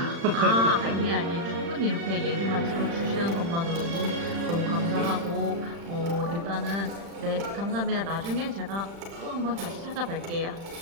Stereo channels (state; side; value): late; left; 35 ms